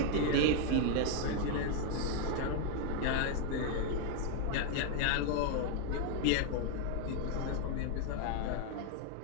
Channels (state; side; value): different; both; correlation 0.01